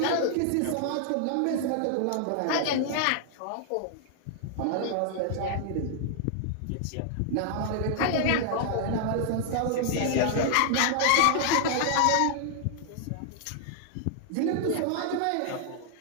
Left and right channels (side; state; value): both; different; correlation -0.01